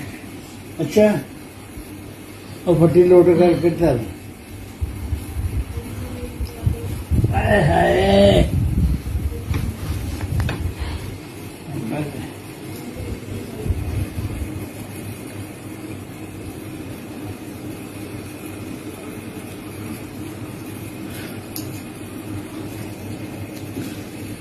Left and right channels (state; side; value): identical; both; correlation 1.00